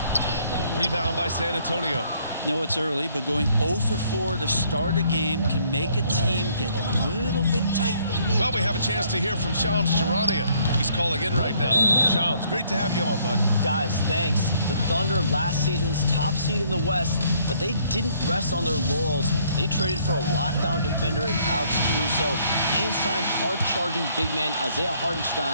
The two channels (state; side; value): inverted; both; correlation -0.65